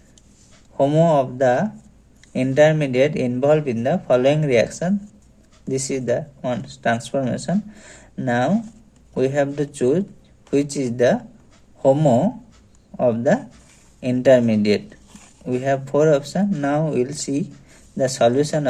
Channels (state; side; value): identical; both; correlation 1.00